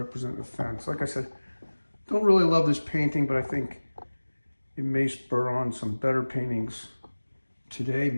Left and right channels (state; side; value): inverted; both; correlation -1.00